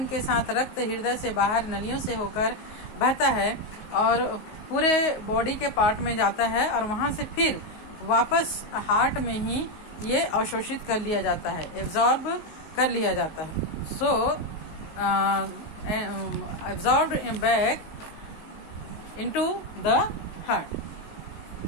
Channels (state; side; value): late; right; 19 ms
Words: के साथ रक्त हृदय से बाहर नलियों से होकर बहता है और पूरे बॉडी के पार्ट में जाता है और वहां से फिर वापस हार्ट में ही ये अवशोषित कर लिया जाता है, एब्जॉर्ब कर लिया जाता है. So absorbed back into the heart.